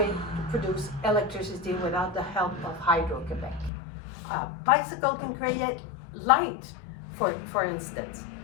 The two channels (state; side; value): drops out; right; at 3.7 s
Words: to produce electricity without the help of Hydro-Québec. A bicycle can create light, for instance.